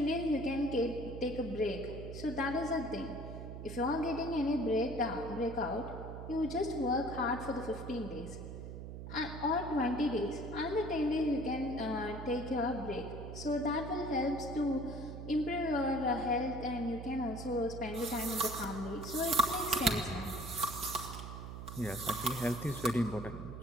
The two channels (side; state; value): right; noise; hum, 9 dB below the sound